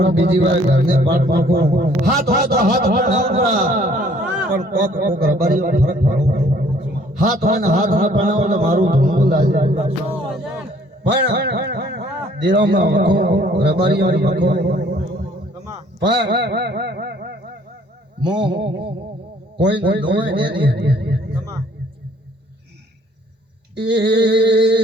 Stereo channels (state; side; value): normal; both; correlation 0.59